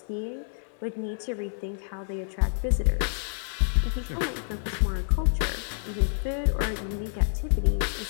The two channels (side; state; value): right; silent; digital silence